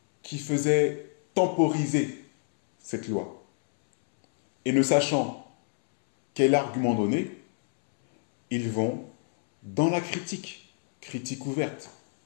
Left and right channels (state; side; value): silent; right; 60 dB below the other